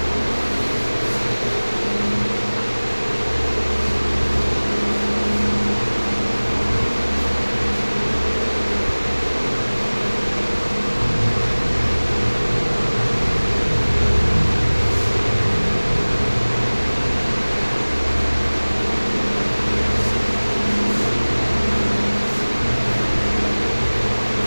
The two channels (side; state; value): both; inverted; correlation -1.00